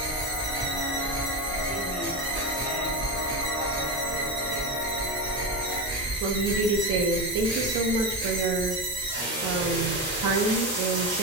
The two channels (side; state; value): both; normal; correlation 0.18